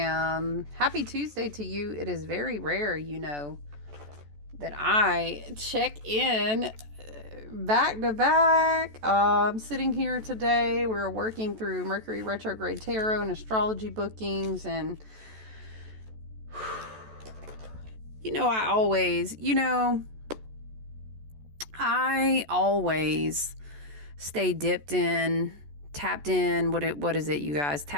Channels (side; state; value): left; late; 14 ms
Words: Happy Tuesday to you. It is very rare, that I check in back to back. I'm sitting here today. We're working through Mercury retrograde tarot and astrology bookings, and I always stay dipped in, tapped in. What is it, you guys?